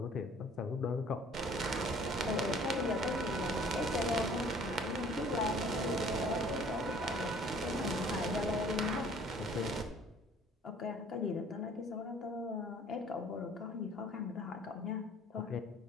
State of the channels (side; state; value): both; normal; correlation 0.53